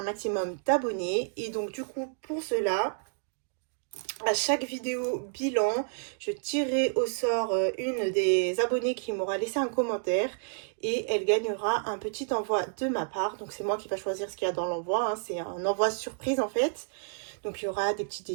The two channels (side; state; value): left; silent; digital silence